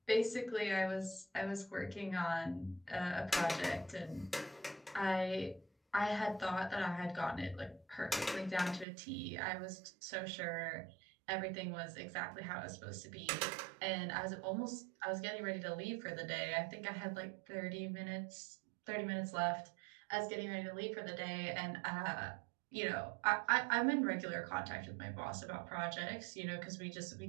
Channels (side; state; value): left; drops out; at 8.8 s